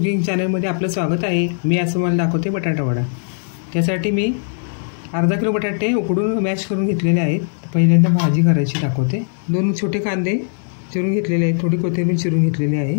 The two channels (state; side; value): silent; right; digital silence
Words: चॅनलमध्ये आपलं स्वागत आहे। मी आज तुम्हाला दाखवते बटाटा वडा। त्यासाठी मी अर्धा किलो बटाटे उकडून मॅश करून घेतलेले आहेत। पहिल्यांदा भाजी करायची दाखवते। 2 छोटे कांदे चिरून घेतलेले आहेत, थोडी कोथिंबीर चिरून घेतलेली